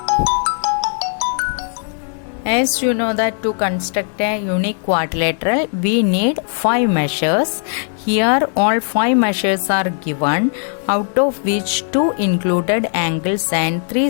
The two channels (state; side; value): silent; right; 57 dB below the other